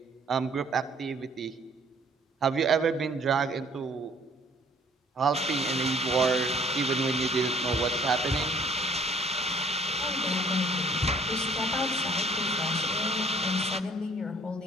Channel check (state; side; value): normal; both; correlation 0.58